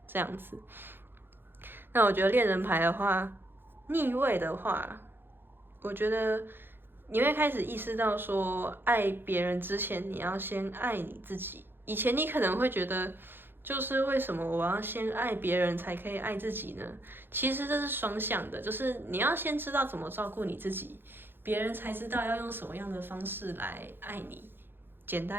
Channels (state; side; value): late; left; 0.10 ms